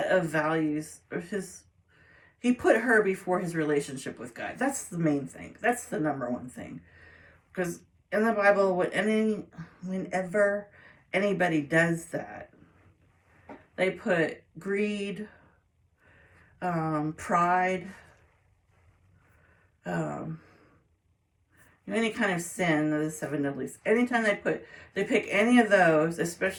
of values, or he put her before his relationship with God. That's the main thing. That's the number one thing. Because in the Bible, whenever anybody does that, they put greed, pride, any kind of sin, the seven deadlies. Anytime they pick any of those,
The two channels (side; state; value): both; identical; correlation 1.00